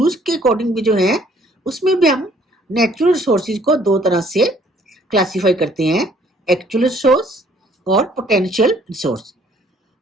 के अकॉर्डिंग भी जो है उसमें भी हम नेचुरल रिसोर्सेज को दो तरह से क्लासिफाई करते हैं, एक्चुअल रिसोर्स और पोटेंशियल रिसोर्स।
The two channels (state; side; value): normal; both; correlation 0.60